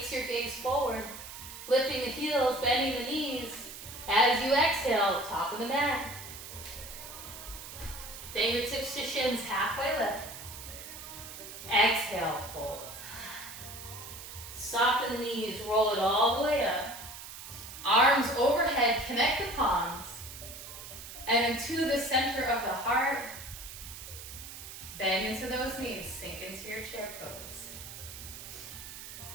your gaze forward, lifting the heels, bending the knees. As you exhale, top of the mat. Fingertips to shins, halfway lift. Exhale, fold. Soften the knees, roll it all the way up. Arms overhead, connect the palms. And then to the center of the heart. Bend into those knees, sink into your chair pose.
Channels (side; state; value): right; noise; hiss, 12 dB below the sound